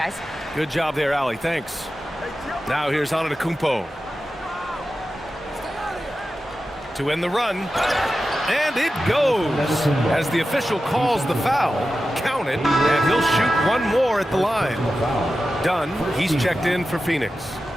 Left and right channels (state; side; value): normal; both; correlation 0.92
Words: Good job there, Allie. Thanks. Now here's Antetokounmpo. To end the run. And it goes. As the official calls the foul, count it, and he'll shoot one more at the line. Dunn, he's checked in for Phoenix.